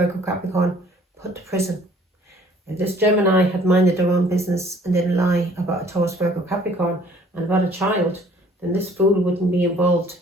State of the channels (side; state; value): both; normal; correlation 0.56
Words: Capricorn put to prison. If this Gemini had minded their own business and didn't lie about a Taurus, Virgo, Capricorn and about a child, then this fool wouldn't be involved